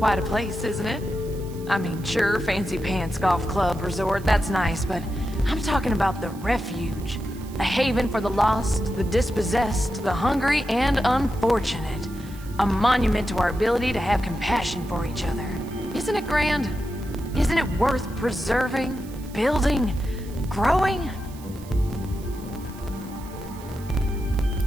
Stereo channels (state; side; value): noise; right; hiss, 21 dB below the sound